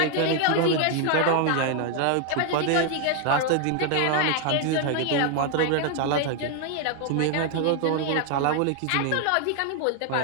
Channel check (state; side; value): different; both; correlation 0.01